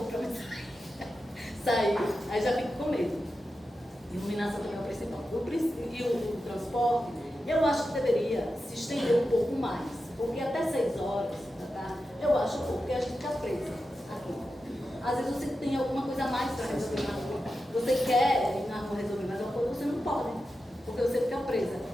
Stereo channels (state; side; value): normal; both; correlation 0.91